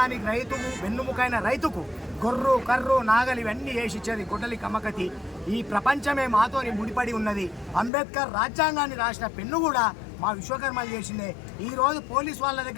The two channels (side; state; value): right; drops out; at 7.9 s